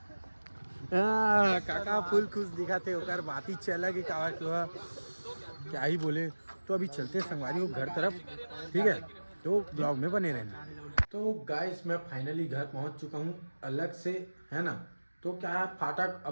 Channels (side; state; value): both; inverted; correlation -1.00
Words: काका फुल खुश दिखा थे, ओकर बात ही अलग ही क्या ही बोले। तो अभी चलते हैं संगवारी को घर तरफ, ठीक है। तो ब्लॉग में बने रहना। तो गाइस मैं फाइनली घर पहुंच चुका हूं अलग से, है ना। तो क्या है, फाटक